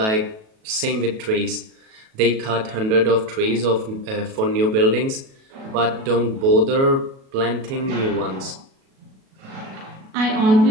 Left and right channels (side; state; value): left; late; 37 ms